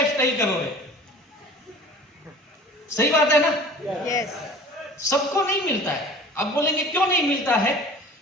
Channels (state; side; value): normal; both; correlation 0.43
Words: करोगे। सही बात है ना? yes. सबको नहीं मिलता है। आप बोलेंगे क्यों नहीं मिलता है?